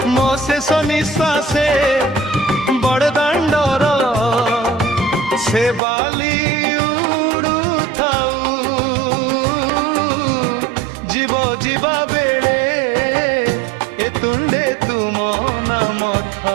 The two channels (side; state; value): left; drops out; at 5.8 s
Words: মো শেষ নিঃশ্বাসে বড়দাণ্ডর সে বালি উড়ু থাউ। জীব ଯିବା ବେଳେ এ তুণ্ডে তুম নাম